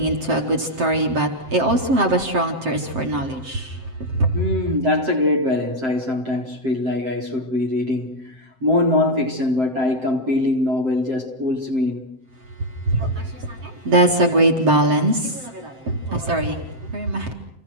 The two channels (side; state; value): left; late; 7.7 ms